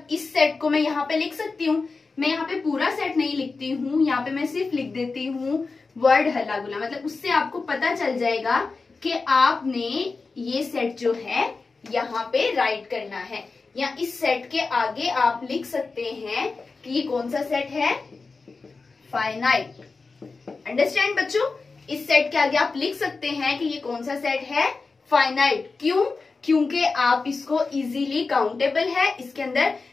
इस सेट को मैं यहाँ पे लिख सकती हूँ, मैं यहाँ पे पूरा सेट नहीं लिखती हूँ, यहाँ पे मैं सिर्फ लिख देती हूँ वर्ड हल्ला गुल्ला, मतलब उससे आपको पता चल जाएगा कि आपने ये सेट जो है यहाँ पे राइट करना है, या इस सेट के आगे आप लिख सकते हैं कि ये कौन सा सेट है? फाइनाइट। अंडरस्टैंड बच्चों? इस सेट के आगे आप लिख सकते हैं कि ये कौन सा सेट है? फाइनाइट। क्यों? क्योंकि आप इसको इजीली काउंटेबल है, इसके अंदर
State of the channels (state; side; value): quieter; right; 4.1 dB